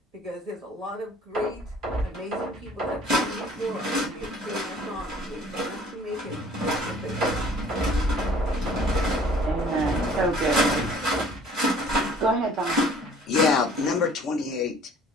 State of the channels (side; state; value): both; normal; correlation 0.53